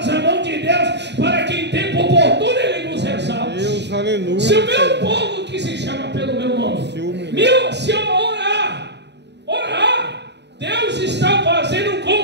mão de Deus, para que em tempo oportuno ele nos exalte. Deus, aleluia. Se o meu povo, que se chama pelo meu nome, se eu orar, Deus está fazendo um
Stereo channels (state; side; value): late; left; 0.50 ms